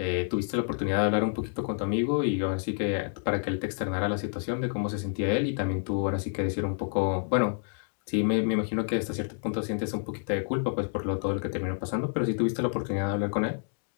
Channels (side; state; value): right; silent; 59 dB below the other